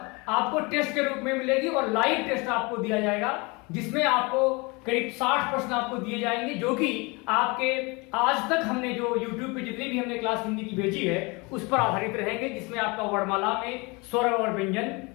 आपको टेस्ट के रूप में मिलेगी और लाइव टेस्ट आपको दिया जाएगा, जिसमें आपको करीब 60 प्रश्न आपको दिए जाएंगे जो कि आपके आज तक हमने जो YouTube पे जितनी भी हमने क्लास हिंदी की भेजी है उस पर आधारित रहेंगे, जिसमें आपका वर्णमाला में स्वर और व्यंजन,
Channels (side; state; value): right; quieter; 27.3 dB